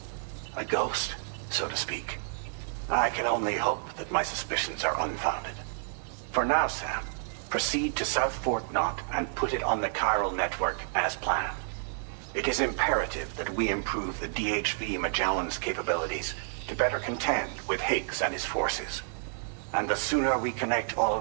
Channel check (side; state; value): left; silent; digital silence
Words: A ghost, so to speak. I can only hope that my suspicions are unfounded. For now, Sam, proceed to South Fort Knott and put it on the chiral network as planned. It is imperative that we improve the DHV Magellan's capabilities to better contend with Higgs and his forces. And the sooner we connect all